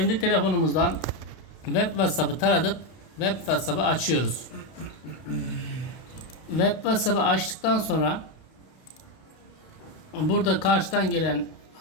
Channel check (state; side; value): late; right; 32 ms